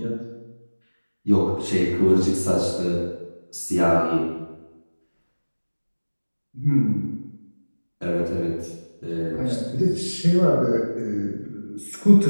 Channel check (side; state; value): both; inverted; correlation -1.00